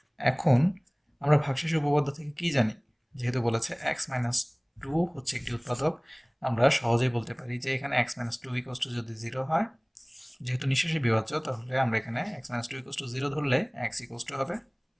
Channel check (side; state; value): both; identical; correlation 1.00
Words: এখন আমরা ভাগশেষ উপপাদ্য থেকে কি জানি? যেহেতু বলেছে x-2 হচ্ছে একটি উৎপাদক, আমরা সহজেই বলতে পারি যে এখানে x-2 ইকুয়ালস টু যদি 0 হয়, যেহেতু নিঃশেষে বিভাজ্য, তাহলে আমরা এখানে x-2 ইকুয়ালস টু 0 ধরলে x ইকুয়ালস টু হবে